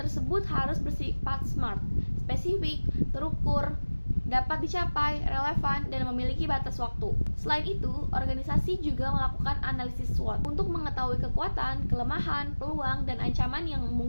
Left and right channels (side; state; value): both; inverted; correlation -1.00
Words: harus bersifat SMART, spesifik, terukur, dapat dicapai, relevan, dan memiliki batas waktu. Selain itu, organisasi juga melakukan analisis SWOT untuk mengetahui kekuatan, kelemahan, peluang, dan ancaman yang